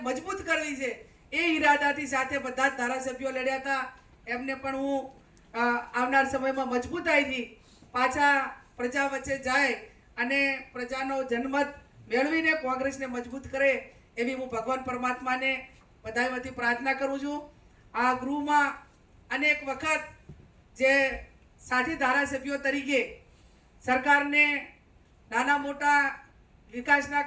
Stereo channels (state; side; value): identical; both; correlation 1.00